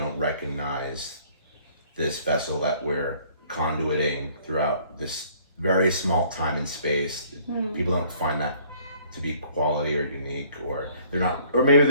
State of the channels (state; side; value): inverted; both; correlation -0.58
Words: recognize this vessel that we're conduiting throughout this very small time and space? People don't find that to be quality or unique, or they're not, or maybe